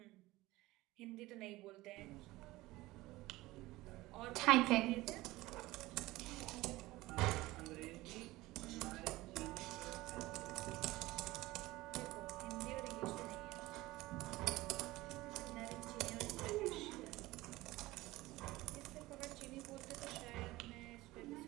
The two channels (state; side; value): quieter; left; 18.9 dB